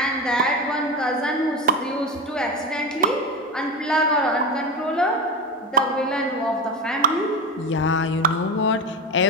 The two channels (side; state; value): both; normal; correlation 0.21